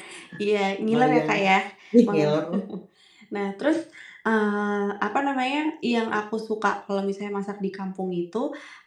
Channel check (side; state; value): both; identical; correlation 1.00